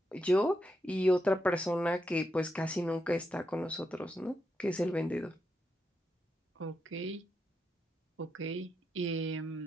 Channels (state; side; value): normal; both; correlation 0.84